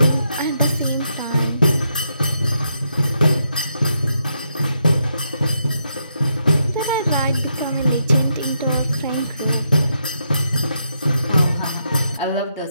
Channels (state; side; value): inverted; both; correlation -0.80